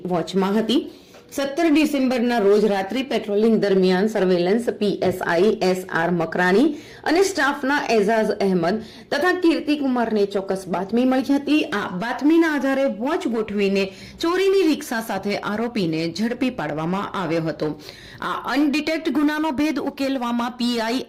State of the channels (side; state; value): both; identical; correlation 1.00